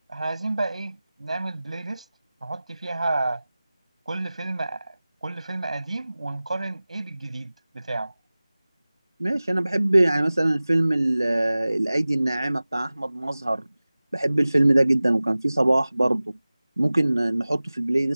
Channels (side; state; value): both; inverted; correlation -0.98